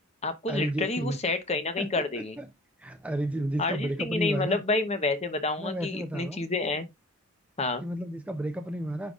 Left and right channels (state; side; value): normal; both; correlation 0.46